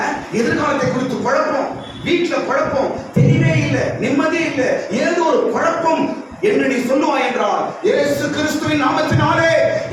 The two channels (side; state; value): both; identical; correlation 1.00